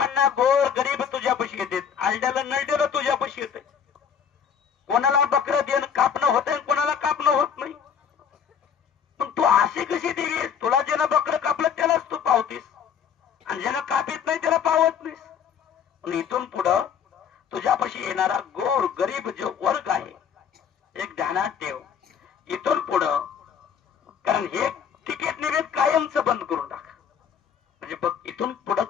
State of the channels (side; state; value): right; quieter; 7.7 dB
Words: गोर गरीब तुझ्यापाशी येतात, आलड्याला नळड्याला तुझ्यापाशी येते, कोणाला बकरं देणं कापणं होतंय, कोणाला कापणं होत नाही, पण तू अशी कशी देवी आहेस, तुला ज्यानं बकरं कापलं त्यालाच तू पावतीस आणि ज्यानं कापित नाही त्याला पावत नाहीस. पण इथून पुढं तुझ्यापाशी येणारा गोर गरीब जो वर्ग आहे, एक ध्यानात ठेव, इथून पुढं, कारण हे तिकीट निवेद कायमचं बंद करून टाक, म्हणजे बघ इथून पुढं